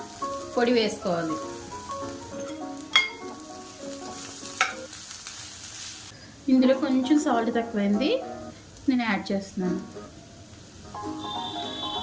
పొడి వేసుకోవాలి. ఇందులో కొంచెం సాల్ట్ తక్కువైంది, నేను యాడ్ చేస్తున్నాను.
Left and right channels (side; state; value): both; identical; correlation 1.00